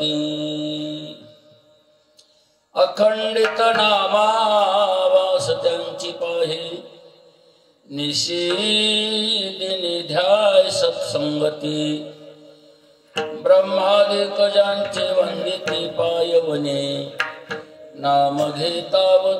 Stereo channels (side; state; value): both; identical; correlation 1.00